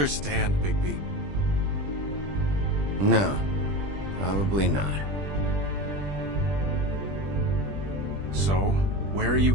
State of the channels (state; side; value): late; left; 20 ms